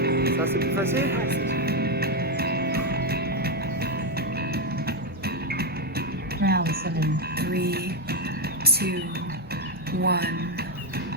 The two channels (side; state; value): both; normal; correlation 0.06